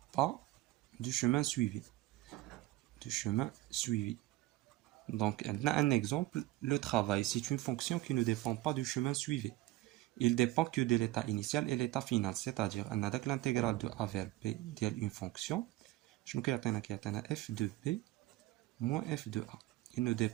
pas du chemin suivi. Donc, un exemple, le travail, c'est une fonction qui ne dépend pas du chemin suivi. Il dépend que de l'état initial et l'état final, c'est-à-dire, on a l'intégrale de a vers b d'une fonction, je nous f de b moins f de a. Il ne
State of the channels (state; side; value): quieter; left; 17.3 dB